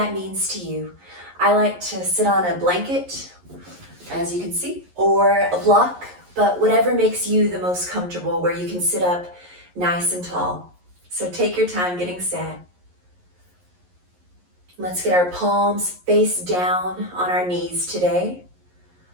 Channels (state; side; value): late; left; 11 ms